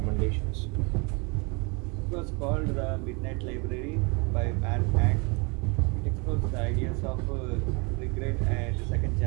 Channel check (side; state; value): left; quieter; 30.5 dB